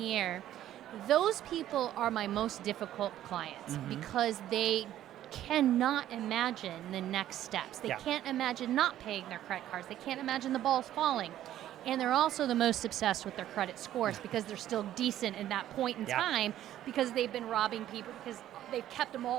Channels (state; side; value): quieter; left; 12.5 dB